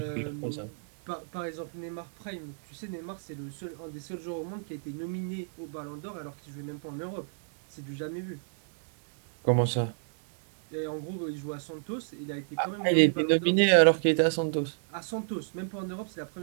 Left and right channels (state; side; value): silent; left; digital silence